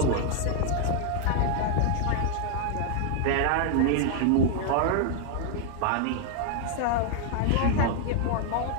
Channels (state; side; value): different; both; correlation 0.00